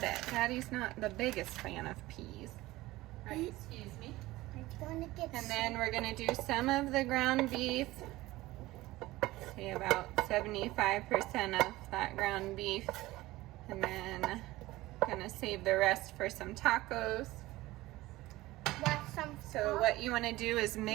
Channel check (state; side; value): quieter; left; 18.3 dB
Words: Daddy's not the biggest fan of peas. All right, excuse me. I'm gonna get and then we're going to do some of the ground beef. Say about 75% of that ground beef. And then going to save the rest for some tacos. So what you want to do is